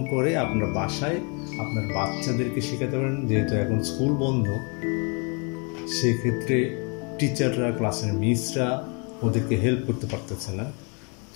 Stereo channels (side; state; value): right; quieter; 34.4 dB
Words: করে আপনার বাসায় আপনার বাচ্চাদেরকে শেখাতে পারেন। যেহেতু এখন স্কুল বন্ধ, সেক্ষেত্রে টিচাররা, ক্লাসের মিসরা ওদেরকে হেল্প করতে পারতেছে না।